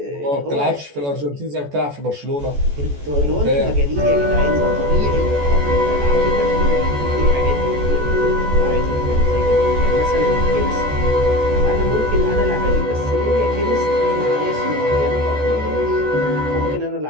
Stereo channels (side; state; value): left; late; 14 ms